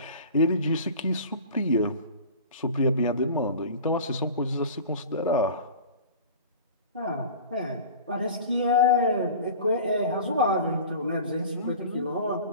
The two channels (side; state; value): both; inverted; correlation -0.38